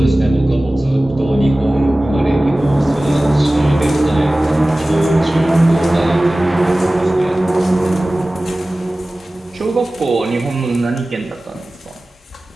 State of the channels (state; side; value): normal; both; correlation 0.97